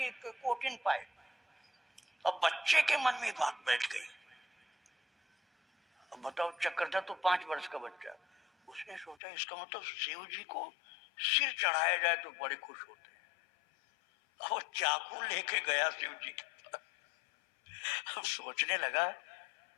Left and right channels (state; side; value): drops out; right; at 9.2 s